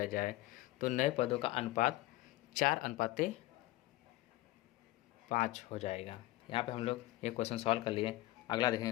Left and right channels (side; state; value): right; quieter; 17.6 dB